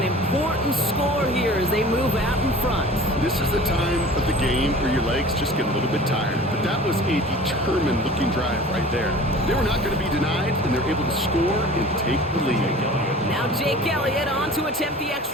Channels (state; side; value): normal; both; correlation 0.42